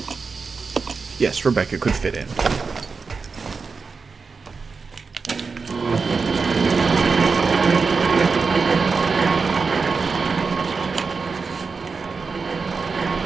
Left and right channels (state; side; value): quieter; left; 4.8 dB